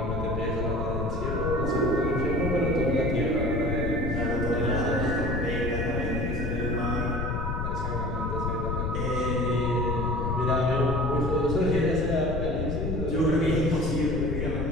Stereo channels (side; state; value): left; noise; rumble, 2 dB below the sound